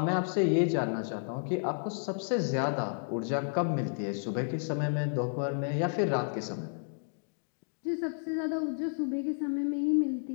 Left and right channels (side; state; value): right; silent; digital silence